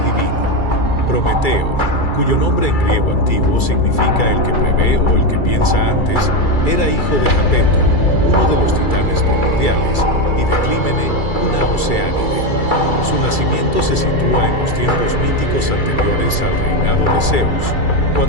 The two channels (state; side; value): late; right; 2.3 ms